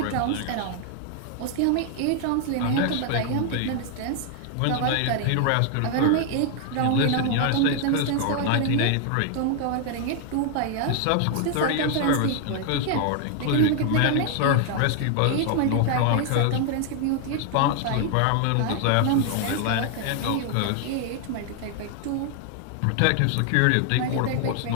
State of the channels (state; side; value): different; both; correlation 0.00